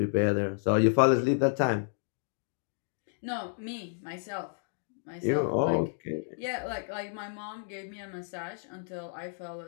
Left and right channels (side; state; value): right; silent; digital silence